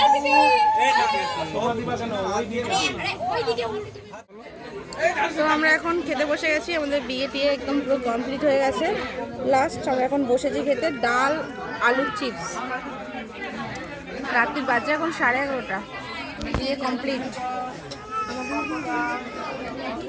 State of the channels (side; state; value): both; identical; correlation 1.00